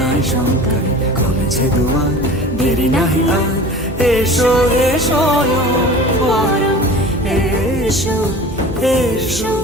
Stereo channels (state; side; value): normal; both; correlation 0.39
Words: শঙ্কারে কমেছে দুয়ার, দেরি নাহি আর এসো হে স্বয়ংবর। এসো এসো